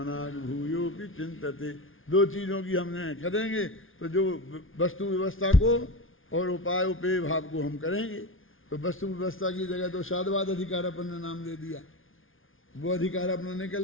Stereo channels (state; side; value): late; right; 0.58 ms